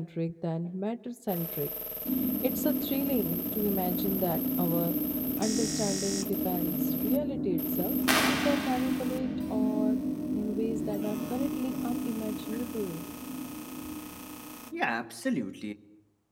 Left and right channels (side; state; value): both; identical; correlation 1.00